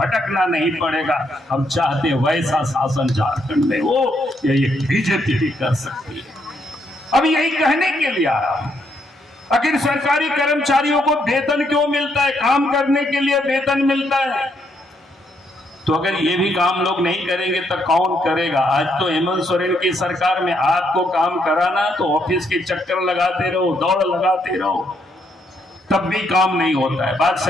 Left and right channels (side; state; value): both; normal; correlation 0.75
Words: नहीं पड़ेगा। हम चाहते हैं वैसा शासन झारखंड में हो, ये बीजेपी भी कर सकती है। अब यही कहने के लिए आ रहा हूं, आखिर सरकारी कर्मचारियों को वेतन क्यों मिलता है? काम करने के लिए वेतन मिलता है, तो अगर ये भी काम लोग नहीं करेंगे तो कौन करेगा? आज तो हेमंत सोरेन की सरकार में आपको काम कराना तो ऑफिस के चक्कर लगाते रहो, दौड़ लगाते रहो, तब भी काम नहीं होता है। बात